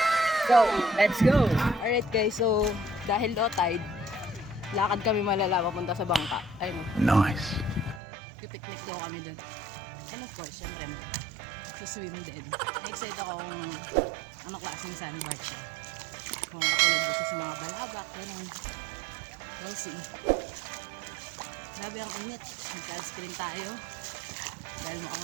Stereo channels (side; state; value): left; drops out; at 8.0 s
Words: So, let's go! Alright guys, so dahil low tide, lakad kami malala papunta sa bangka. Ayun. Nice. Pipiknik daw kami dun. And of course, syempre mo, swim din. Na-excite ako kung anong klaseng sandbar siya. Kung katulad gusto sa mga balabak, gano'n. We'll see. Grabe ang init. Nagka-screen tayo. Dahil